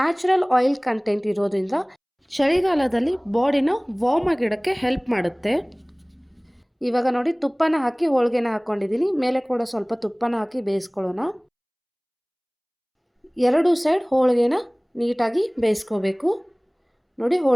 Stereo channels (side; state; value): both; identical; correlation 1.00